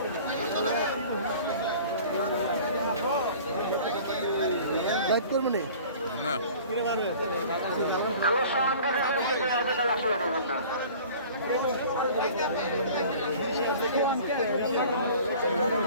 লাইট করবো না না আমার সমানকে আসলে দেবেন না।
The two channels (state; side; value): inverted; both; correlation -0.45